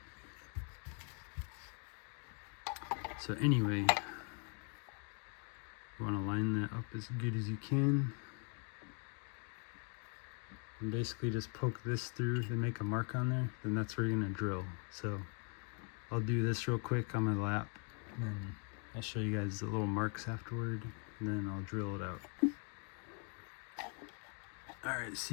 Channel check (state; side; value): quieter; right; 37.8 dB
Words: So anyway, you want to line that up as good as you can. And basically just poke this through, then make a mark on there, then that's where you're going to drill. So I'll do this real quick on my lap, and then I'll show you guys the little marks afterward, and then I'll drill it out. Alright,